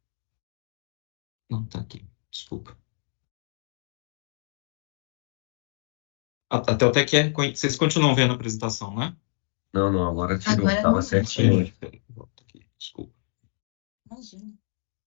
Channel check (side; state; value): right; silent; 60 dB below the other